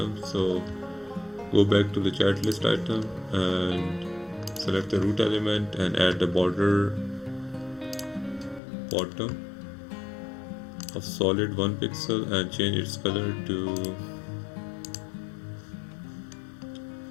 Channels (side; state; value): right; drops out; at 8.6 s